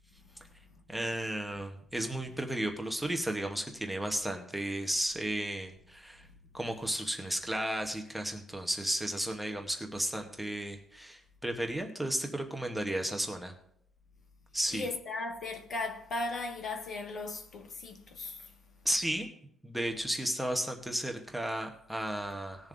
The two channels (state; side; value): normal; both; correlation 0.90